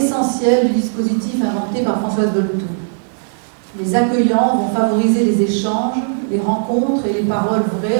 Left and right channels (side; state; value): left; silent; 67 dB below the other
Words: du dispositif inventé par Françoise Dolto. Les accueillants vont favoriser les échanges, les rencontres et les paroles